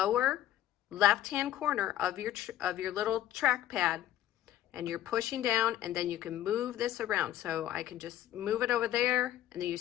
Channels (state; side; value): quieter; right; 12.8 dB